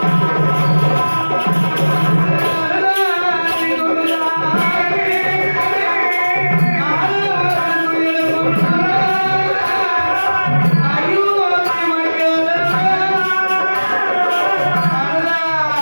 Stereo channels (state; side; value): inverted; both; correlation -1.00